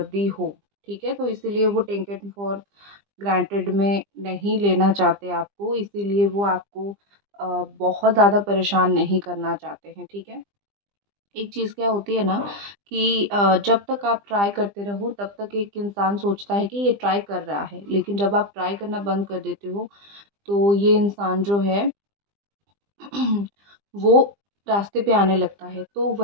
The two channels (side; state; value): left; late; 20 ms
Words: हो, ठीक है? तो इसीलिए वो टेकन फॉर ग्रांटेड में नहीं लेना चाहते आपको, इसीलिए वो आपको बहुत ज़्यादा परेशान नहीं करना चाहते हैं, ठीक है? एक चीज़ क्या होती है ना कि जब तक आप ट्राई करते रहो तब तक एक इंसान सोचता है कि ये ट्राई कर रहा है, लेकिन जब आप ट्राई करना बंद कर देते हो तो ये इंसान जो है वो रास्ते पे आने लगता है। तो